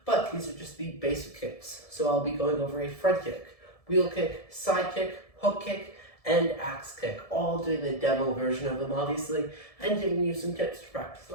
but these are just the basic kicks. So I'll be going over a front kick, wheel kick, side kick, hook kick, and axe kick, all doing the demo version of them obviously, and giving you some tips to practice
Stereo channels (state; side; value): late; right; 1.7 ms